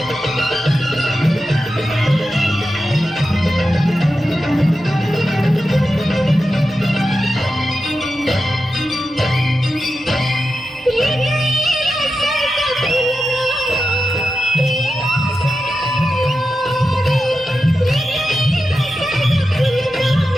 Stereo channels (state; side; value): normal; both; correlation 0.90